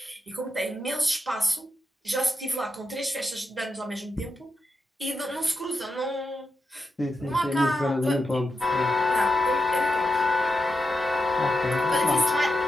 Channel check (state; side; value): normal; both; correlation 0.87